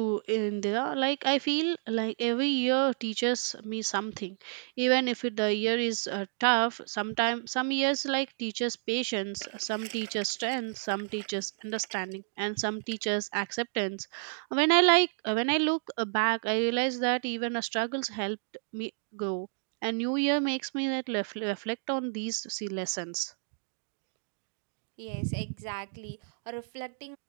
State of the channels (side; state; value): left; silent; digital silence